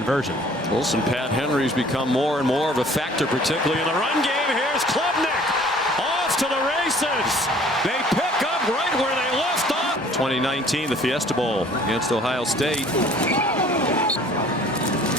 Wilson Pat Henry's become more and more of a factor, particularly in the run game. Here's Klubnik off to the races. They pick up right where they left off. 2019, the Fiesta Bowl against Ohio State.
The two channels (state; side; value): normal; both; correlation 0.53